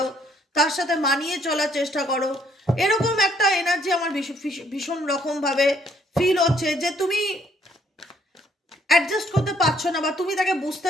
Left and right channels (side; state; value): both; normal; correlation 0.66